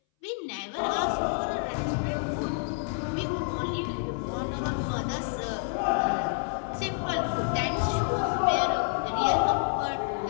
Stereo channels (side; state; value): right; silent; 59 dB below the other